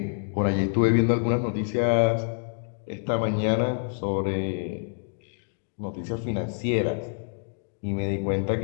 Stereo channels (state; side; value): silent; right; digital silence